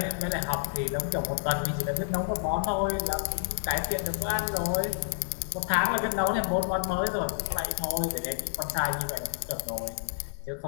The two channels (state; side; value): silent; right; 58 dB below the other